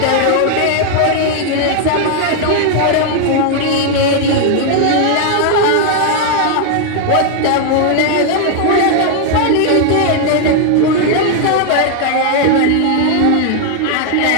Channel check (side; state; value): both; different; correlation 0.00